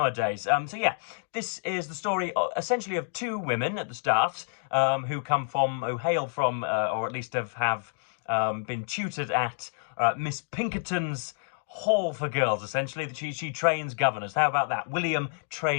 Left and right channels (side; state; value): right; silent; digital silence